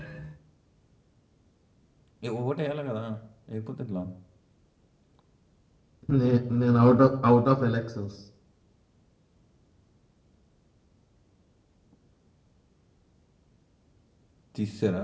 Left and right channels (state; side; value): identical; both; correlation 1.00